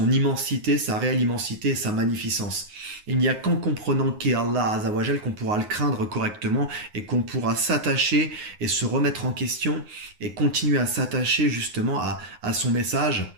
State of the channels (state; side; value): late; left; 9.6 ms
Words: immensité, sa réelle immensité et sa magnificence. Il n'y a qu'en comprenant qui est Allah Azawajal qu'on pourra le craindre correctement et qu'on pourra s'attacher et se remettre en question et continuer à s'attacher justement à son message,